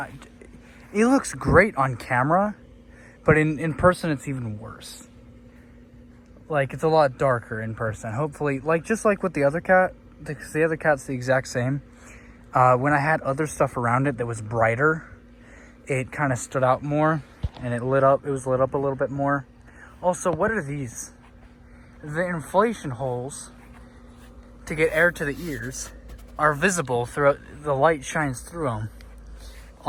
it looks great on camera, but in person it's even worse. Like, it's a lot darker in person. Hopefully, like, just like with the other cat, because the other cat's the exact same. When I had other stuff around it that was brighter, it kind of stood out more and it was lit up a little bit more. Also, what are these? The inflation holes to get air to the ears are visible throughout. The light shines through them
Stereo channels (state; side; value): identical; both; correlation 1.00